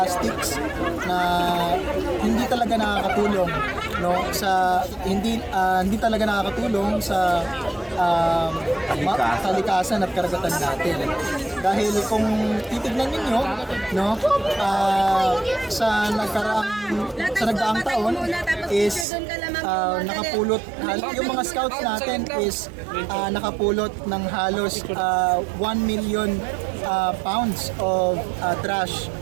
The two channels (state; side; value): drops out; left; at 19.1 s